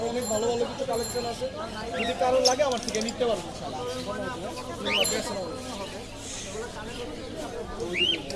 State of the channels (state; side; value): identical; both; correlation 1.00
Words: অনেক ভালো ভালো কিছু কালেকশন আছে, যদি কারো লাগে আমার থেকে নিতে পারবো ইনশাল্লাহ।